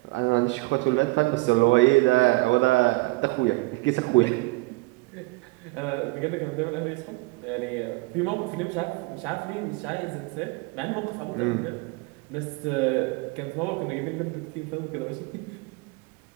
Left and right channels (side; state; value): left; quieter; 24.1 dB